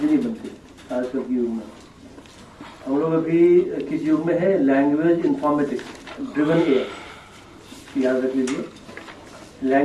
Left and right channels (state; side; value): identical; both; correlation 1.00